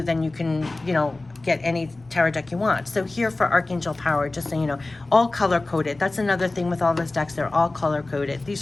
then you can, you know, get any tarot deck you want. So here for Archangel Power, just so you know, all color coded. That's another thing with all those decks, they're all color coded.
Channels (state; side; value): quieter; right; 3.0 dB